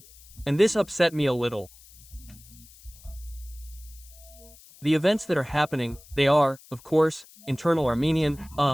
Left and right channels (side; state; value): left; noise; hiss, 23 dB below the sound